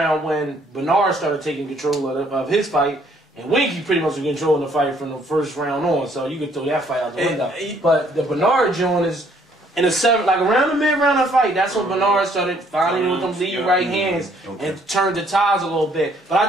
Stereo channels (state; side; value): normal; both; correlation 0.64